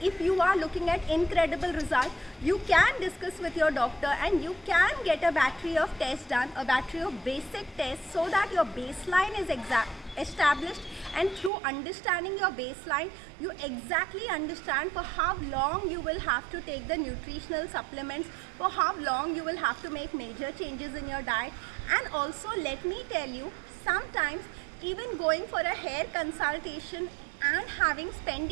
if you are looking at incredible results, you can discuss with your doctor and you can get a battery of tests done, a battery of basic tests, so that your baseline is established, and through understanding your baseline, you exactly understand for how long you will have to take the nutritional supplements, for how long you will have to make major changes in your diet. And also, let me tell you, sometimes even going for a hair consultation and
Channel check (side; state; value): left; drops out; at 11.5 s